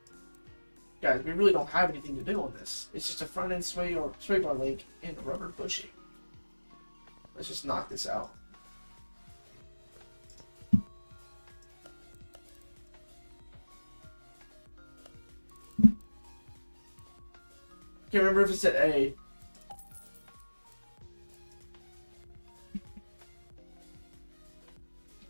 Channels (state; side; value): inverted; both; correlation -1.00